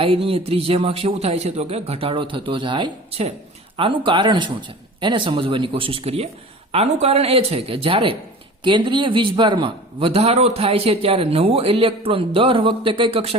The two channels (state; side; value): normal; both; correlation 0.39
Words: ત્રિજ્યામાં શું થાય છે તો કે ઘટાડો થતો જાય છે. આનું કારણ શું છે એને સમજવાની કોશિશ કરીએ. આનું કારણ એ છે કે જ્યારે કેન્દ્રીય વીજભારમાં વધારો થાય છે ત્યારે નવો ઇલેક્ટ્રોન દર વખતે કઈ